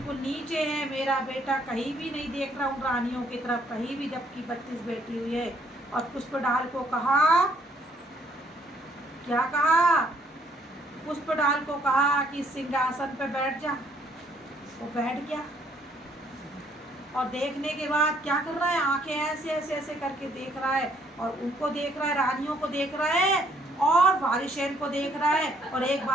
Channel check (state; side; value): normal; both; correlation 0.66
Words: नीचे है, मेरा बेटा कहीं भी नहीं देख रहा उन रानियों की तरफ, कहीं भी, जबकि 32 बैठी हुई है। और पुष्पडाल को कहा, क्या कहा? पुष्पडाल को कहा कि सिंहासन पे बैठ जा। वो बैठ गया और देखने के बाद क्या कर रहा है, आंखें ऐसे ऐसे ऐसे करके देख रहा है, और उनको देख रहा है, रानियों को देख रहा है और वारिसेन को देख रहा है, और एक